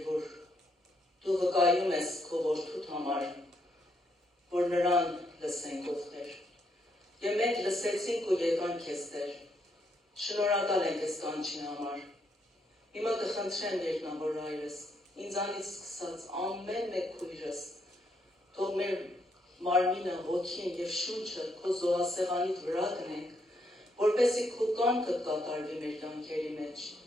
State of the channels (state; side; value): normal; both; correlation 0.76